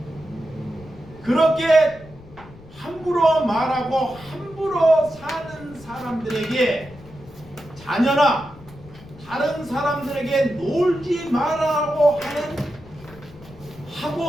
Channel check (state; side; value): noise; left; rumble, 20 dB below the sound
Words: 그렇게 함부로 말하고 함부로 사는 사람들에게, 자녀나 다른 사람들에게 놀지 말라고